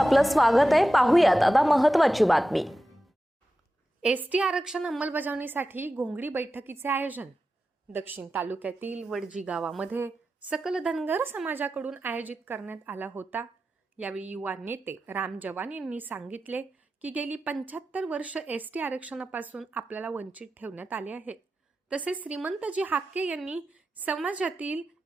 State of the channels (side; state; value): both; normal; correlation 0.92